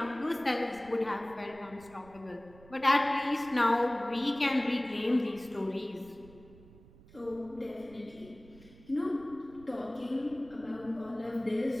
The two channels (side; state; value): right; noise; rumble, 22 dB below the sound